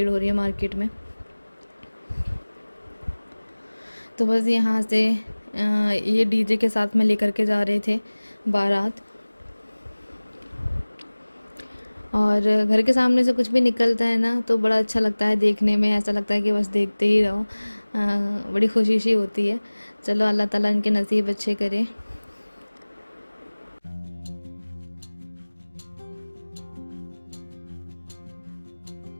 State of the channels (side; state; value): both; inverted; correlation -1.00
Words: हो रही है मार्केट में। तो बस यहाँ से ये डीजे के साथ में लेकर के जा रहे थे बारात। और घर के सामने से कुछ भी निकलता है ना, तो बड़ा अच्छा लगता है देखने में, ऐसा लगता है कि बस देखते ही रहो। बड़ी खुशी सी होती है। चलो अल्लाह ताला इनके नसीब अच्छे करे।